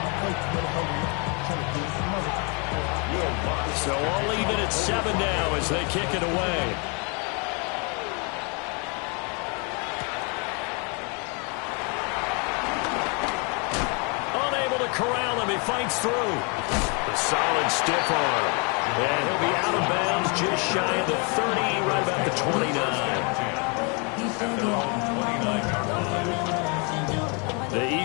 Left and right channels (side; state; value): right; quieter; 34.1 dB